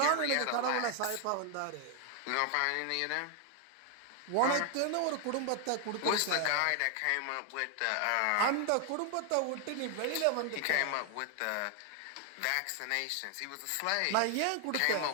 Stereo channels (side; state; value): both; different; correlation 0.00